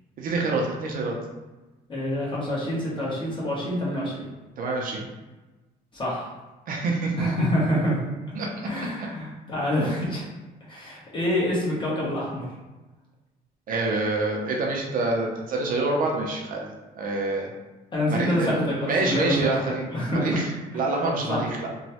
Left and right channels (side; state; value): both; normal; correlation 0.47